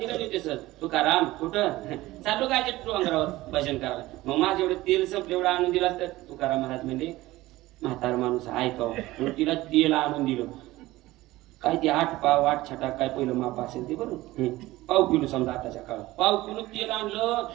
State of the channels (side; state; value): left; quieter; 17.9 dB